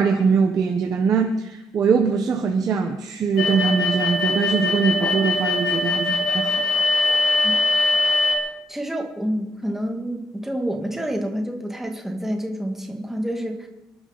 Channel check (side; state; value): both; normal; correlation 0.75